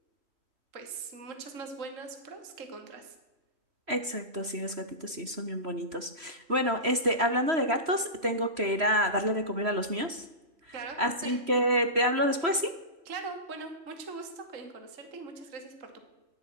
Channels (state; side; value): late; left; 3.0 ms